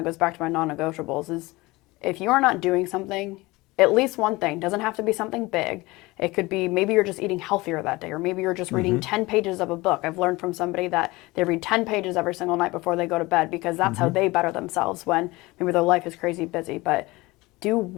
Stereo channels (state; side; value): quieter; right; 21.7 dB